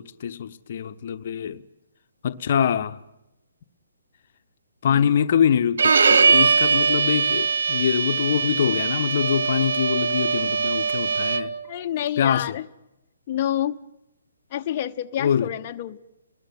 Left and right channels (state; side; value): inverted; both; correlation -0.73